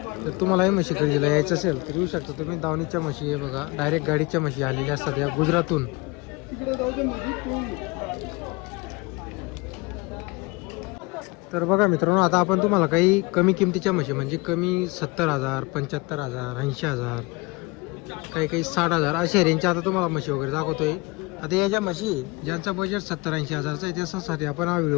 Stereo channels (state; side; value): quieter; right; 25.4 dB